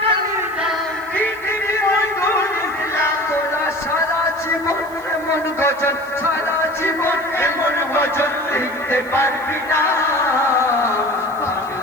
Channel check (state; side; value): noise; right; hiss, 24 dB below the sound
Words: কালি দাও, দিয়ে দেবে মধুর ইসলাম। তোরা সারা জীবন এমন গজল, সারা জীবন এমন গজল লিখতে পারবি না,